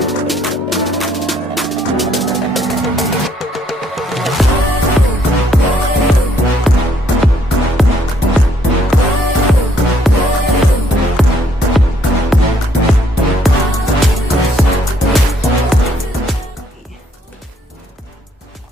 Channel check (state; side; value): normal; both; correlation 0.68